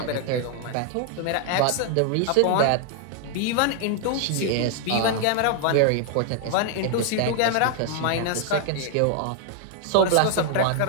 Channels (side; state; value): both; different; correlation 0.00